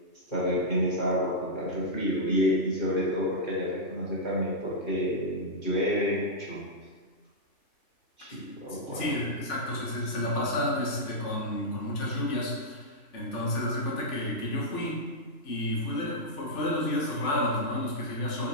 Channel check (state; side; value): late; right; 3.4 ms